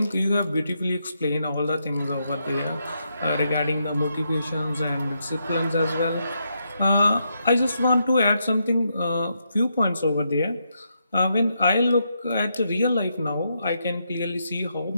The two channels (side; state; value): both; inverted; correlation -0.81